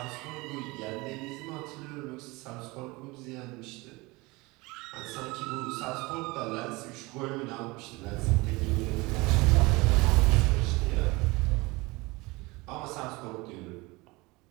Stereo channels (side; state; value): left; quieter; 23.6 dB